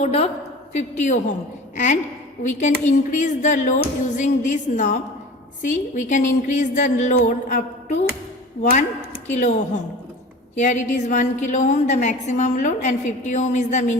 of 50 ohm and we can increase the load using this knob. See, we can increase the load up to 1 kilo ohm. Here it is 1 kilo ohm the maximum load and 50 ohm is the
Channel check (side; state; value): both; normal; correlation 0.38